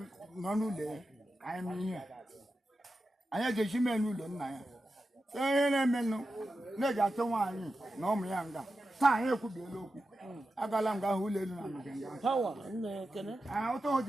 nọ n'ụlọ ya anyị mee ihe anyị ga-eji mee n'ụlọ nna ya si ihe na-emenụ na-eji atụ nwaanyị na ụmụ ya nga taa anyị ekwubiela okwu agala m ga-ahụ ụlọ elu na amịga nga power nne kene ụtọ o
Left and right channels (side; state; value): both; normal; correlation 0.91